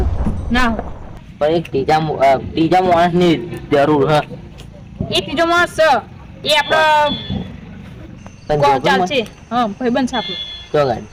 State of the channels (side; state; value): both; identical; correlation 1.00